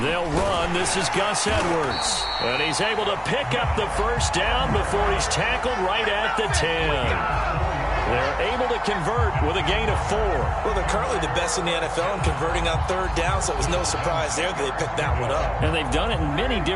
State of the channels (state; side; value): identical; both; correlation 1.00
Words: They'll run. This is Gus Edwards. And he's able to pick up the 1st down before he's tackled right at the 10. They're able to convert with a gain of 4. Well, they're currently the best in the NFL in converting on 3rd down, so it was no surprise there that they picked that one up. And they've done it in many